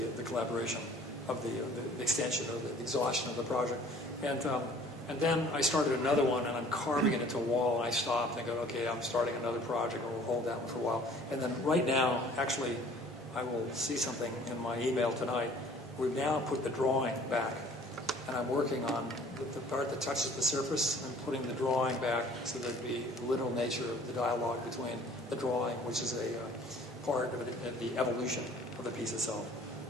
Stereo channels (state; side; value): normal; both; correlation 0.52